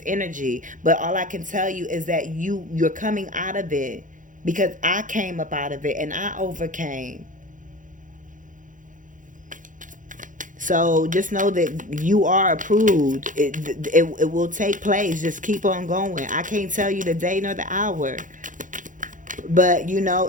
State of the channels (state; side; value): late; left; 0.38 ms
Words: energy. But all I can tell you is that you're coming out of it, because I came up out of it and I overcame. So just know that you are approved. It will take place. Just keep on going. I can't tell you the day nor the hour. But